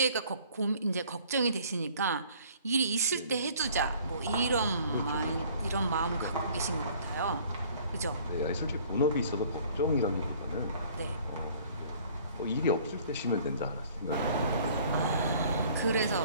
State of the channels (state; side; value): inverted; both; correlation -0.54